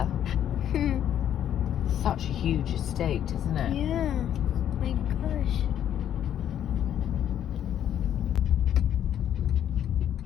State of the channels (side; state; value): right; quieter; 10.3 dB